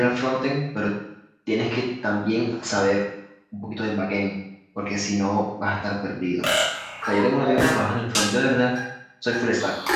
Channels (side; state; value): both; identical; correlation 1.00